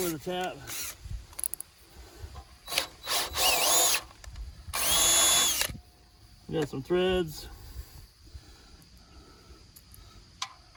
a tap. Got some threads.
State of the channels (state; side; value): identical; both; correlation 1.00